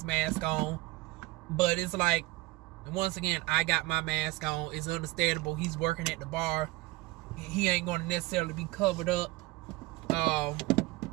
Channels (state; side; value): quieter; left; 21.0 dB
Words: mask on, but it's like, once again, I got my mask on. It's understandable. He's working at the bar. He ain't going to necessarily be covered up or